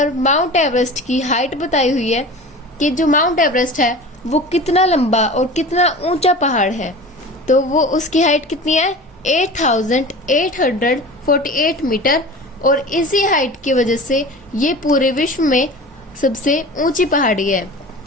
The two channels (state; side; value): normal; both; correlation 0.36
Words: माउंट एवरेस्ट की हाइट बताई हुई है कि जो माउंट एवरेस्ट है वो कितना लंबा और कितना ऊंचा पहाड़ है, तो वो उसकी हाइट कितनी है? 8848 मीटर, और इसी हाइट की वजह से ये पूरे विश्व में सबसे ऊंची पहाड़ी है।